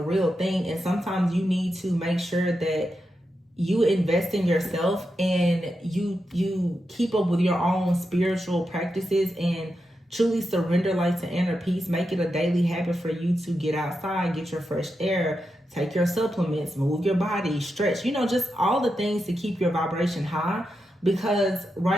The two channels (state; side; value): normal; both; correlation 0.87